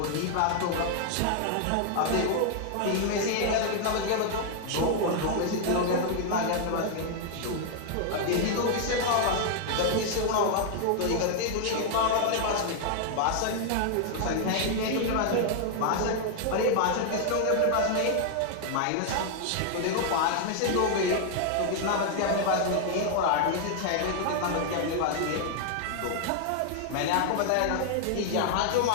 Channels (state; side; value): different; both; correlation 0.00